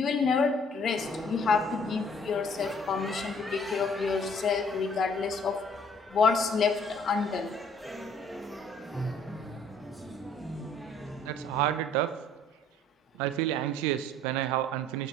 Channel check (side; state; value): both; normal; correlation 0.58